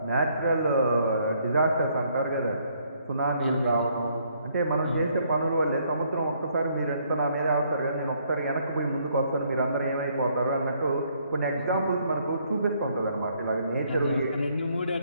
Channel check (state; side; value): inverted; both; correlation -0.68